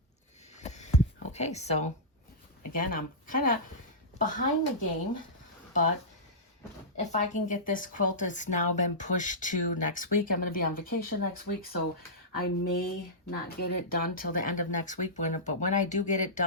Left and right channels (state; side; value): normal; both; correlation -0.13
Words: Okay, so again, I'm kind of behind the game, but if I can get this quilt, it's now been pushed to next week. I'm going to be on vacation next week, so I may not get it done till the end of next week. But when I do get it